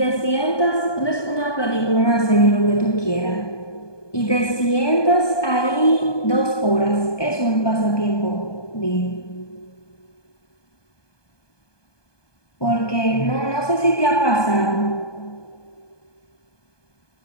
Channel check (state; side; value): late; right; 1.2 ms